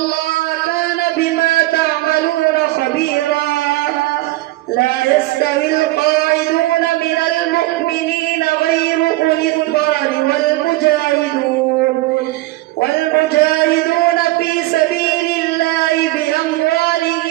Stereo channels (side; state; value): left; quieter; 18.5 dB